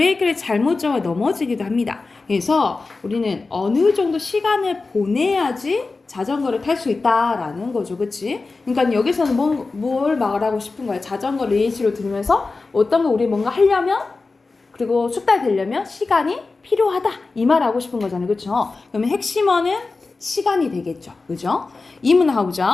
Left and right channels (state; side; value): quieter; right; 3.8 dB